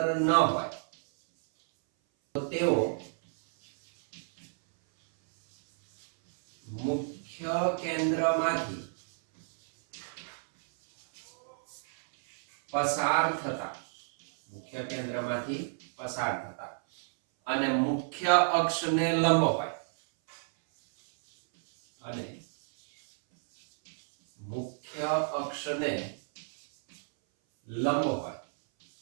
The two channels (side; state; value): left; silent; 58 dB below the other